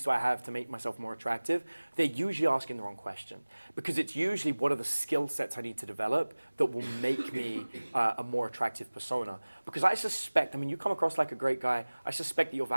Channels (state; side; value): inverted; both; correlation -1.00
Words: do I have to make myself more attractive, they're usually asking the wrong question. Because it's usually what are the skill sets I need to develop that will make me a more attractive persona. Because I suspect, you come across like a great guy, I suspect that your